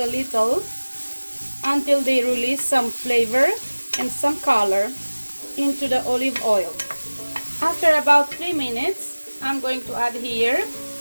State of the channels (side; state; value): both; inverted; correlation -1.00